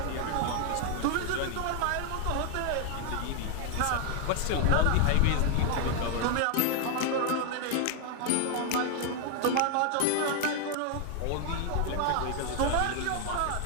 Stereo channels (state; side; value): different; both; correlation 0.00